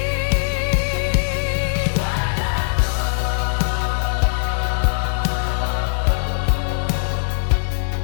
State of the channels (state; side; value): silent; right; digital silence